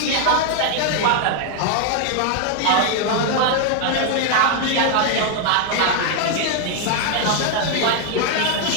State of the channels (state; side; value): different; both; correlation 0.01